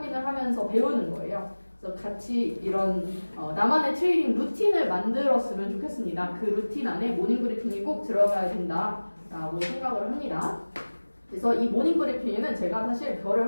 하면서 배우는 거예요. 그래서 같이 이런 나만의 트레이딩 루틴을 만들었으면 좋겠습니다. 그 루틴 안에 모닝 브리핑이 꼭 들어가야 된다라고 생각을 합니다. 그래서 이 모닝 브리핑에는 제가 사실 별을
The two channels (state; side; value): inverted; both; correlation -1.00